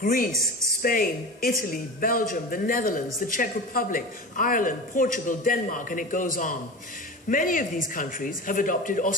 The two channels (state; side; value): normal; both; correlation 0.30